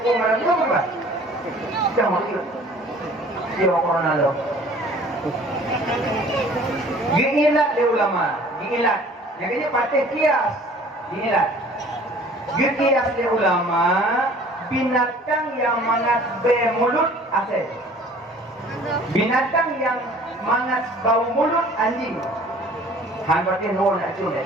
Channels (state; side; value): normal; both; correlation 0.50